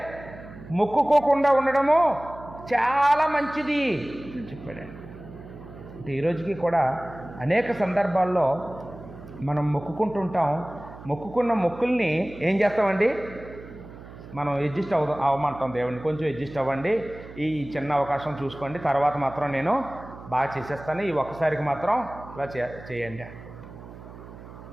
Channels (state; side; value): noise; right; hum, 16 dB below the sound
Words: మొక్కుకోకుండా ఉండడము చాలా మంచిది అని చెప్పాడండి. అంటే ఈరోజుకి కూడా అనేక సందర్భాల్లో మనం మొక్కుకుంటుంటాం. మొక్కుకున్న మొక్కుల్ని ఏం చేస్తామండి, మనం అడ్జస్ట్ అవ్వమంటాం దేవుడిని, కొంచెం అడ్జస్ట్ అవ్వండి, ఈ చిన్న అవకాశం చూసుకోండి, తర్వాత మాత్రం నేను బాగా చేసేస్తాను, ఈ ఒక్కసారికి మాత్రం ఇలా చేయండి.